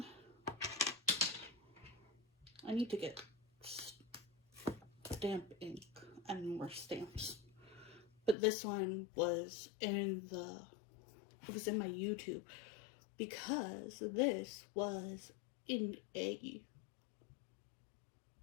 I need to get stamp ink and more stamps. But this one was in my YouTube because this was in a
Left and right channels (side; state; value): right; drops out; at 8.3 s